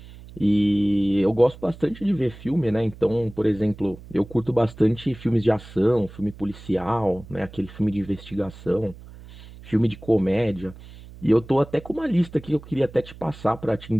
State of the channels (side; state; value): right; noise; hum, 18 dB below the sound